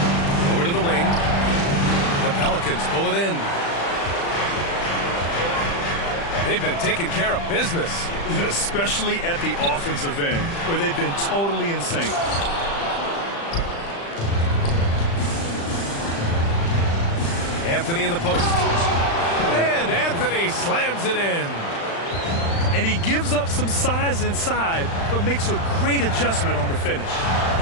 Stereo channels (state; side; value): late; right; 35 ms